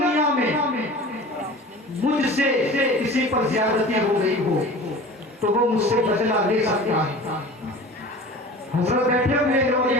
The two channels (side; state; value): both; normal; correlation 0.38